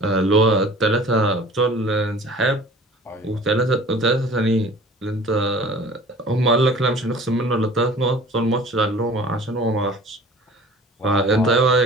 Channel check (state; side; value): normal; both; correlation 0.45